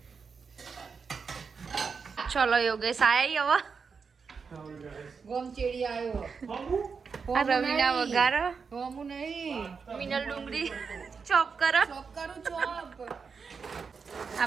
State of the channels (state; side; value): quieter; left; 5.5 dB